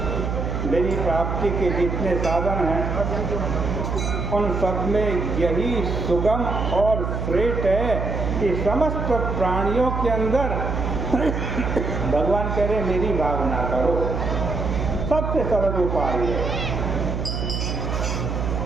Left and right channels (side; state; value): right; noise; hum, 2 dB below the sound